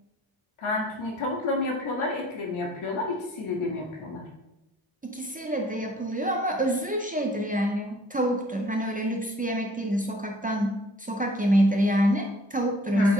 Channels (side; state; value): both; normal; correlation 0.54